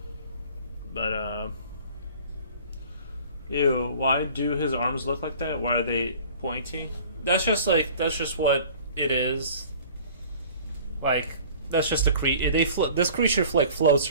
But ew, why do his arms look like that? Why are they pointy? That's just what it is. Like that's just a creature. This creature like floats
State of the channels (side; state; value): both; inverted; correlation -0.47